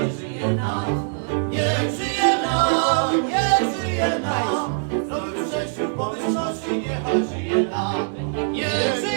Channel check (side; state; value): left; silent; digital silence